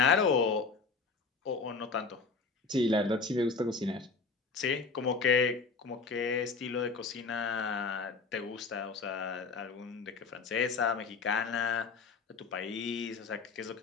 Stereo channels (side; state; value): right; quieter; 4.6 dB